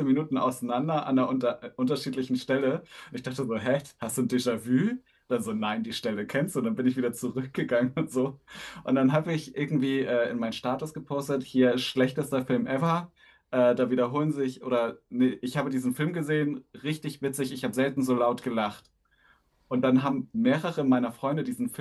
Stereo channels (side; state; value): both; identical; correlation 1.00